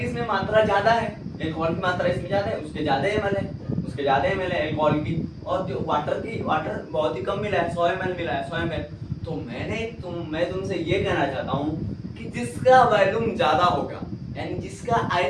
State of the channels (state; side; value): identical; both; correlation 1.00